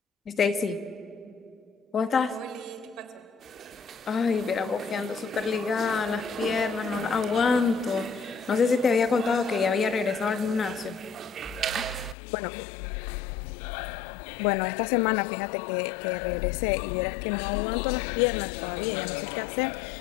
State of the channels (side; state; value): right; drops out; at 12.2 s